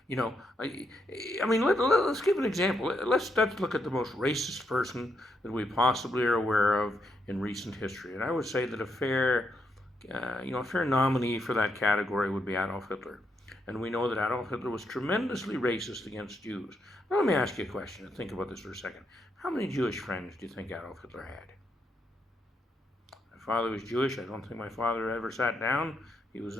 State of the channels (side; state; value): both; normal; correlation 0.79